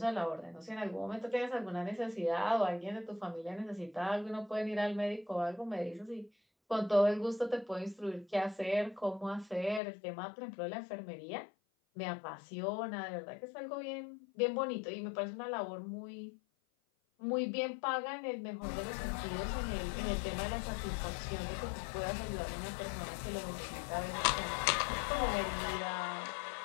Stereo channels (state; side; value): drops out; right; at 9.8 s